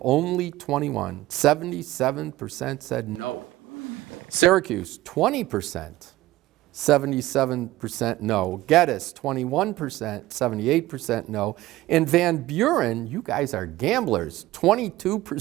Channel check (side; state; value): left; quieter; 16.8 dB